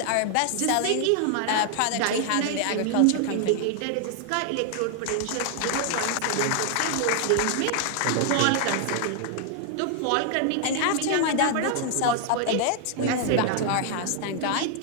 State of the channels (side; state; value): both; different; correlation 0.00